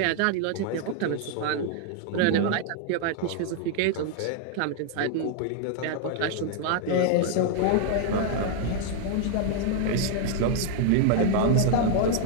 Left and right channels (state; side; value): different; both; correlation 0.00